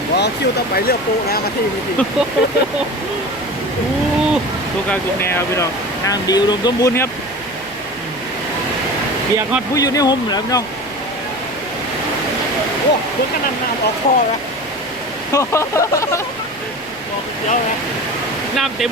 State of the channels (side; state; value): right; noise; rumble, 26 dB below the sound